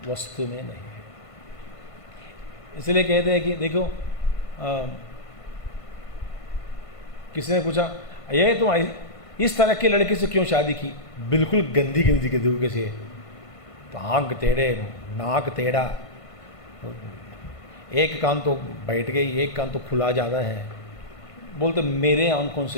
वस्तु में नहीं है। इसलिए कहते हैं कि देखो, किसी ने पूछा, ये तुम इस तरह की लड़की से क्यों शादी की? बिल्कुल गंदी गंदी के तरीके से तो आंख टेढ़े, नाक टेढ़ा, एक कान तो बैठ गई, एक कान तो खुला ज़्यादा है। बोलते मेरे आंखों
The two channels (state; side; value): late; right; 1.5 ms